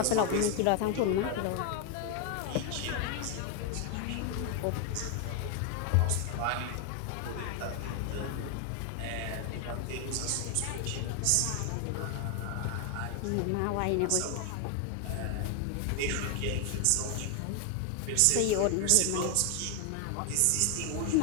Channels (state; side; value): different; both; correlation 0.01